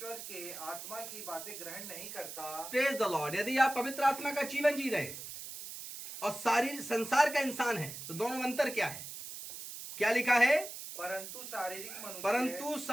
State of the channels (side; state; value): right; noise; hiss, 10 dB below the sound